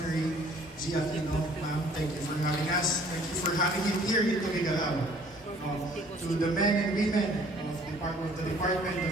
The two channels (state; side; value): normal; both; correlation 0.56